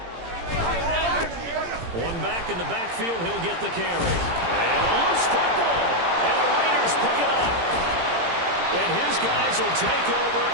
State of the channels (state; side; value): late; left; 17 ms